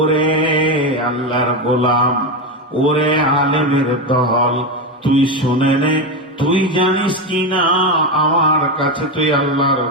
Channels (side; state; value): both; normal; correlation 0.13